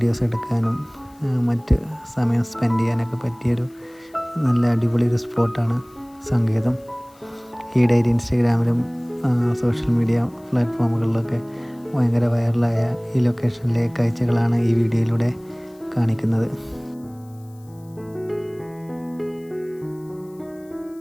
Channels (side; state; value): left; noise; hiss, 30 dB below the sound